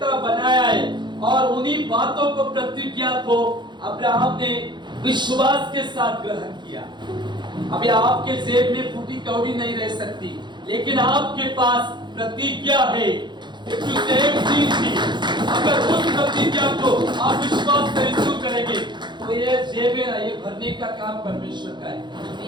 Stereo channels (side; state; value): left; late; 0.22 ms